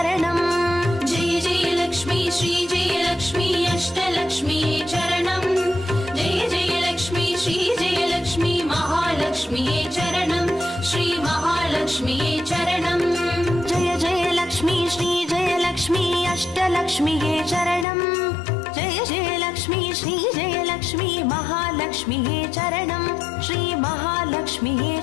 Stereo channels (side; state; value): right; drops out; at 17.9 s